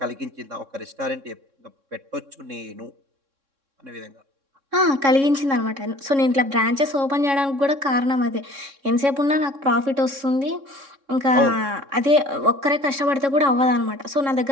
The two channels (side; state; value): left; late; 3.6 ms